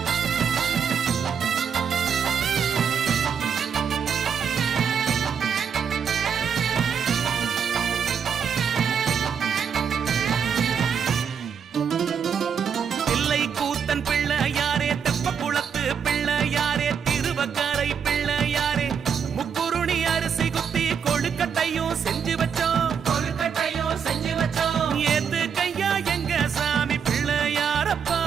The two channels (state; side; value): quieter; left; 7.1 dB